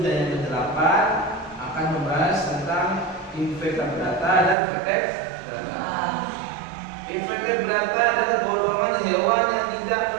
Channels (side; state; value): left; drops out; at 4.5 s